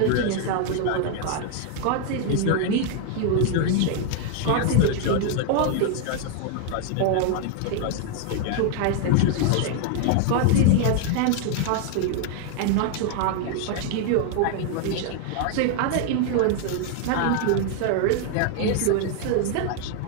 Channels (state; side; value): different; both; correlation 0.00